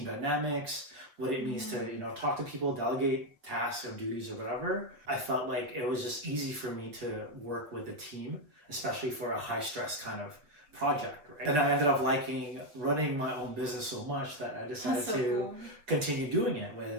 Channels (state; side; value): late; left; 7.1 ms